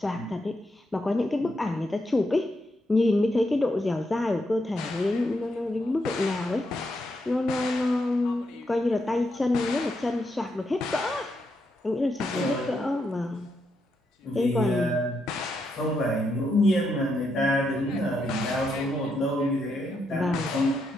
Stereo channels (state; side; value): normal; both; correlation 0.81